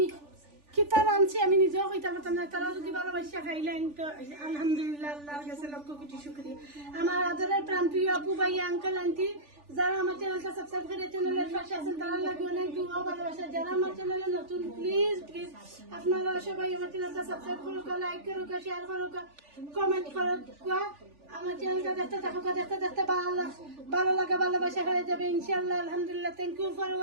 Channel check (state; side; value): late; left; 3.4 ms